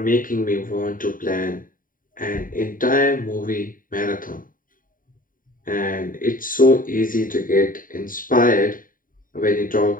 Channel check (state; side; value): late; right; 0.40 ms